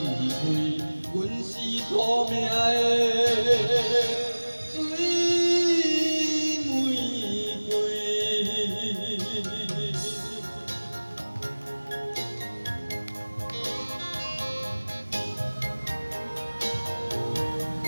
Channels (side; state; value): both; inverted; correlation -1.00